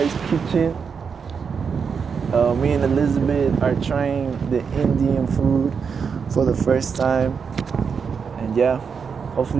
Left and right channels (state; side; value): quieter; left; 6.1 dB